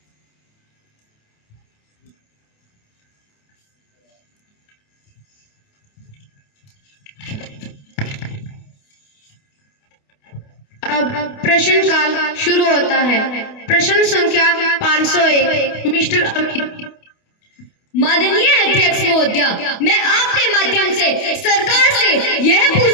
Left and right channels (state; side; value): late; right; 28 ms